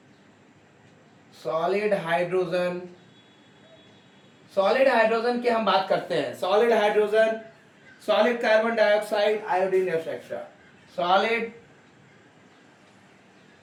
solid hydrogen, solid hydrogen की हम बात करते हैं। Solid hydrogen, solid carbon dioxide, iodine etcetera. Solid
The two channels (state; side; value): identical; both; correlation 1.00